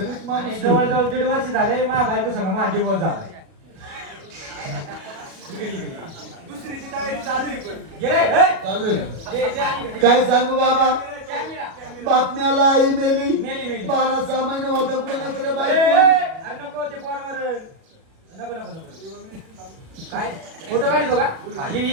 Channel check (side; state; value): left; late; 37 ms